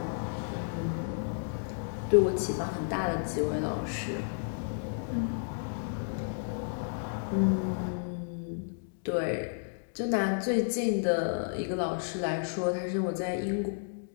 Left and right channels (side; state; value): right; silent; digital silence